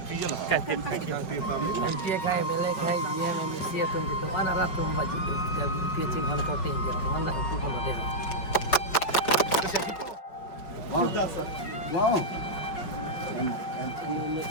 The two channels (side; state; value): right; late; 5.4 ms